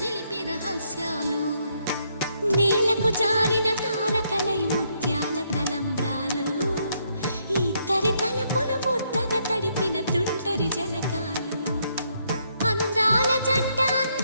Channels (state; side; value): inverted; both; correlation -0.74